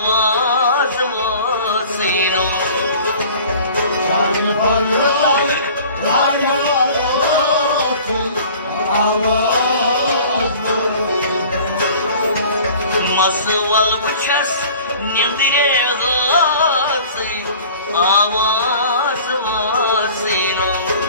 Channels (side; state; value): both; inverted; correlation -0.46